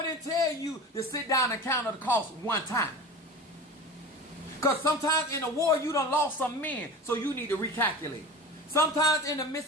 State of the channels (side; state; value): both; normal; correlation 0.33